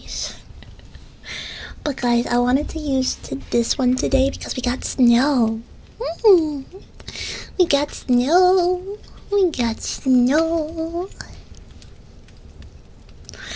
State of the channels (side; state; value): both; identical; correlation 1.00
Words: But guys, I wanted to use this one today because we got snow. Mm, we got snow. We got snow.